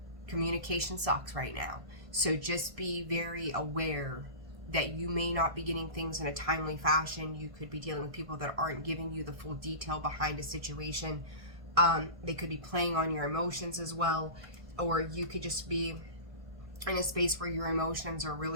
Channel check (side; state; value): left; late; 1.5 ms